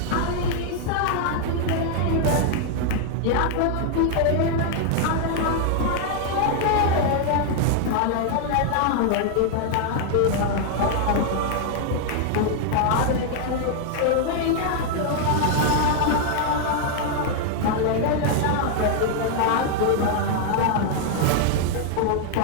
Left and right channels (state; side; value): different; both; correlation 0.00